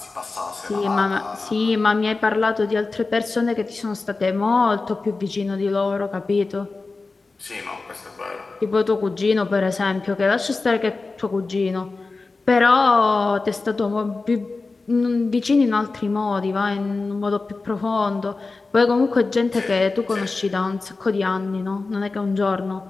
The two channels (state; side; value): quieter; right; 3.8 dB